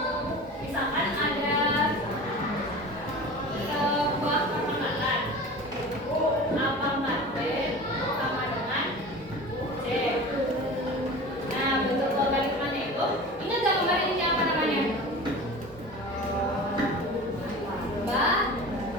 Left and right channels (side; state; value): both; normal; correlation 0.35